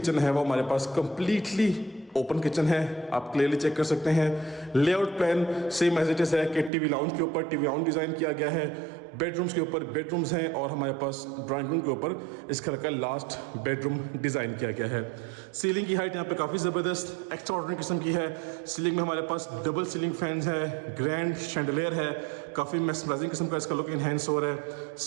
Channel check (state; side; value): drops out; left; at 6.7 s